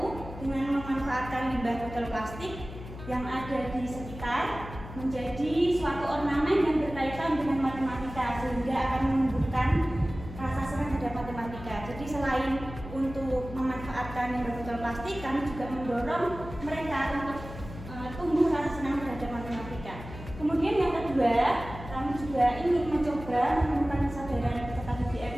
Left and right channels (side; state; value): left; noise; hum, 12 dB below the sound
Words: dengan memanfaatkan limbah botol plastik yang ada di sekitar menjadi suatu ornamen yang berkaitan dengan matematika sehingga akan menumbuhkan rasa senang terhadap matematika. Jadi selain untuk memanfaatkan limbah botol plastik, kami juga mendorong mereka untuk tumbuh rasa senang terhadap matematika. Kemudian yang kedua, kami juga ingin mencoba menemukan kesadaran peserta didik